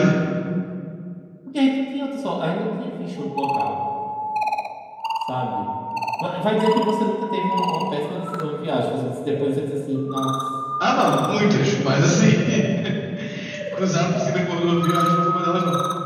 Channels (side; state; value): both; identical; correlation 1.00